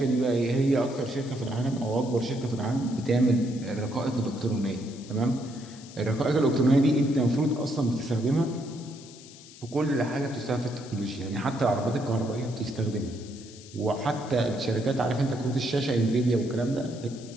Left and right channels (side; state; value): left; noise; hiss, 19 dB below the sound